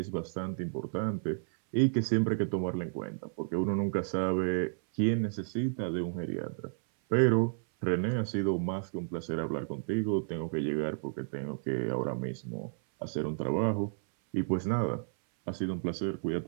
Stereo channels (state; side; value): silent; left; 56 dB below the other